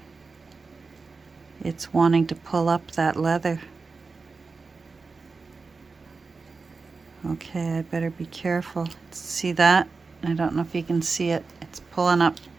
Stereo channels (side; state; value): left; quieter; 4.3 dB